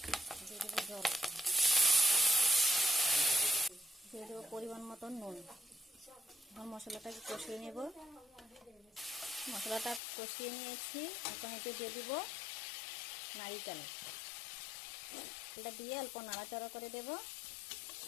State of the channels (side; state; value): right; drops out; at 10.0 s